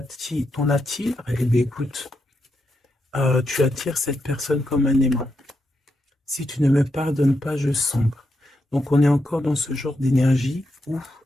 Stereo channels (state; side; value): normal; both; correlation 0.83